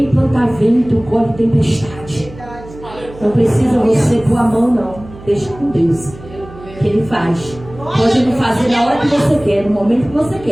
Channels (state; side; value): noise; right; hum, 17 dB below the sound